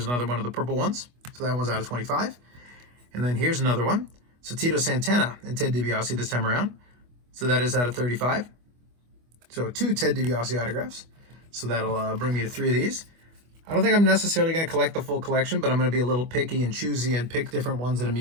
another one of the purple ones. So that one's out of 25. And then here's another one. So Tito Santana and Ted DiBiase this time around. So that is out of 35. So 2 Ted DiBiase autographs. So that'll bring me to 3 of these. I don't think I'm necessarily going to collect the full collection, but I'm going to be a little picky and choosy and pick different ones that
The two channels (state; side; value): late; left; 25 ms